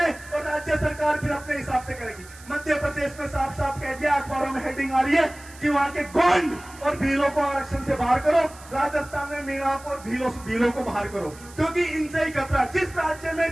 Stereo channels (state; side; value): noise; right; hiss, 20 dB below the sound